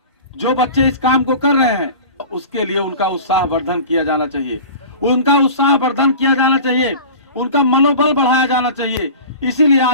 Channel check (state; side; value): inverted; both; correlation -0.37